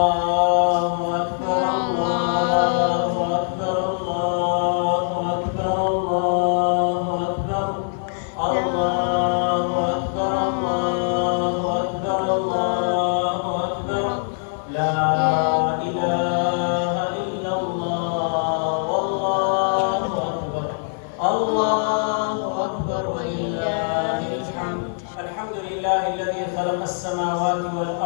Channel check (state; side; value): silent; right; 58 dB below the other